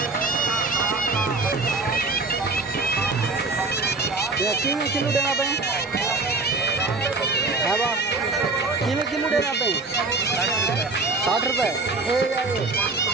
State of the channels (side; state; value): left; quieter; 3.6 dB